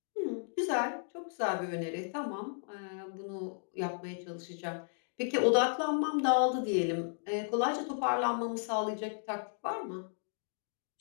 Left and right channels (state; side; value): silent; right; digital silence